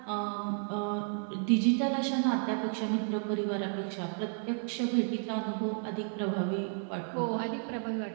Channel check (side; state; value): left; silent; 56 dB below the other